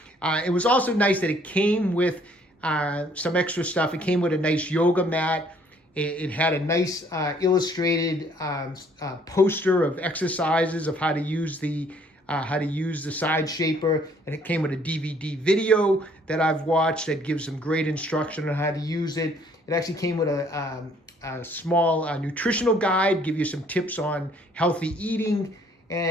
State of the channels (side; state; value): both; normal; correlation 0.61